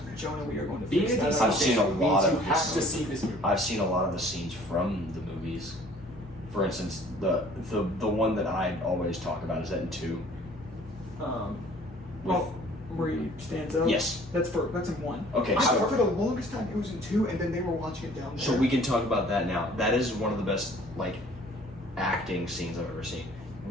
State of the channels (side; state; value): both; normal; correlation 0.53